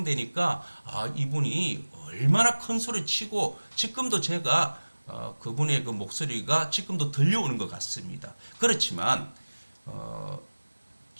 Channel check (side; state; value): both; inverted; correlation -1.00